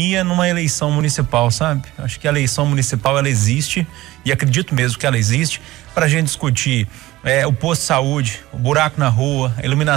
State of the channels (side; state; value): left; quieter; 17.4 dB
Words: numa eleição municipal, sabe? Acho que a eleição municipal, ela existe, e acredito mesmo que ela existe, pra gente discutir o posto de saúde, o buraco na rua, a